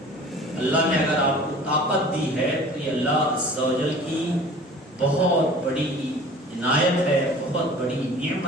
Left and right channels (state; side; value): normal; both; correlation 0.44